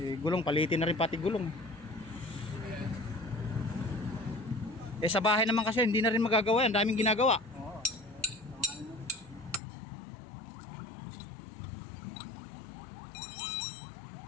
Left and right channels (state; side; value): drops out; right; at 9.6 s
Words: Gulong, palitin na rin pati gulong. Sa bahay naman kasi hindi na rin magagawa yan, daming ginagawa. Oo.